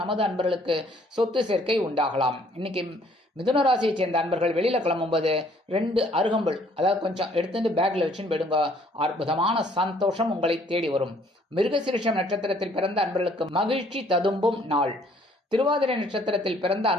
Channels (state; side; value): normal; both; correlation 0.61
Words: நமது அன்பர்களுக்கு சொத்து சேர்க்கை உண்டாகலாம். இன்னைக்கு மிதுன ராசியை சேர்ந்த அன்பர்கள் வெளியில கிளம்பும்போது 2 அருகம்புல் அதாவது கொஞ்சம் எடுத்துட்டு பேக்ல வச்சுன்னு போயிடுங்க. அற்புதமான சந்தோஷம் உங்களை தேடி வரும். மிருகசீரிஷம் நட்சத்திரத்தில் பிறந்த அன்பர்களுக்கு மகிழ்ச்சி ததும்பும் நாள். திருவாதிரை நட்சத்திரத்தில் பிறந்த